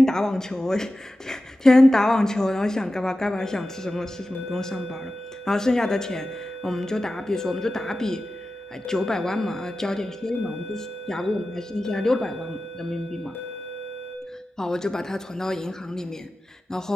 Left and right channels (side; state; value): both; normal; correlation 0.94